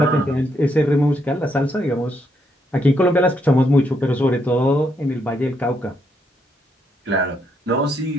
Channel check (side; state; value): both; normal; correlation 0.76